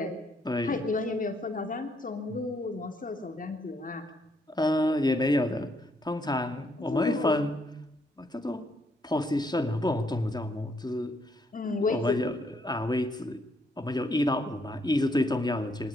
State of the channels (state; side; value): normal; both; correlation 0.72